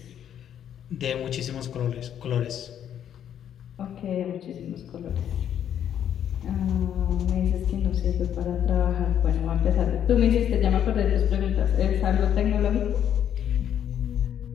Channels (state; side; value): quieter; right; 9.7 dB